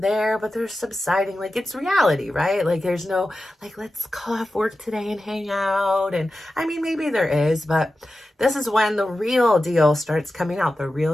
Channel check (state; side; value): normal; both; correlation 0.93